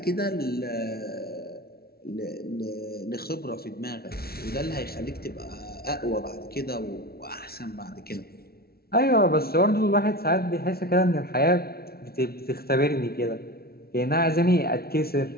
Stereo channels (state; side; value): late; right; 0.44 ms